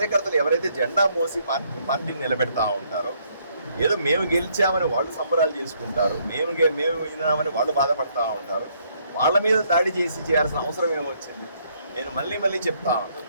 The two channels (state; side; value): inverted; both; correlation -0.70